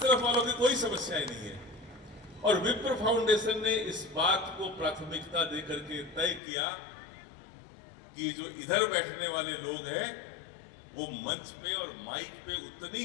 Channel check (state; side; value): drops out; right; at 6.4 s